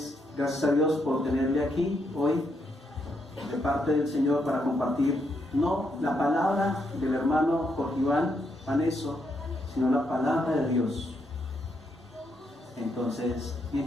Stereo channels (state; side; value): normal; both; correlation 0.78